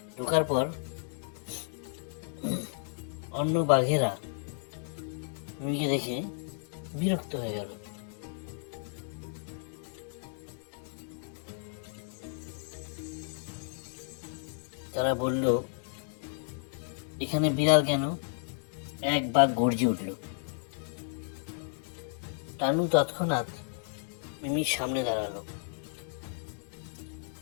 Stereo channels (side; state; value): right; silent; 56 dB below the other